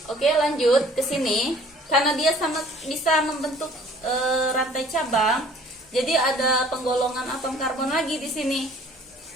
Oke, lanjut ke sini. Karena dia bisa membentuk rantai cabang, jadi ada penggolongan atom karbon lagi di sini.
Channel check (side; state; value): both; normal; correlation 0.53